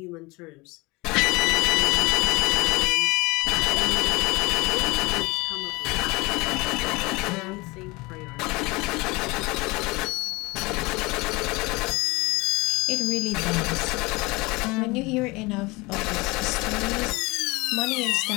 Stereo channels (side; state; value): right; quieter; 23.9 dB